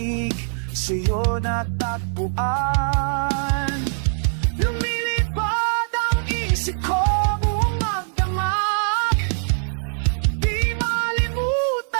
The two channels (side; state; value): left; silent; digital silence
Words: sa'yo natagpuan. Lumilipad ang isip ko buong magdamag. Di